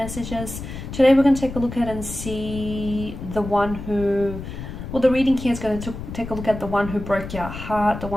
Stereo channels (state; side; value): noise; left; rumble, 9 dB below the sound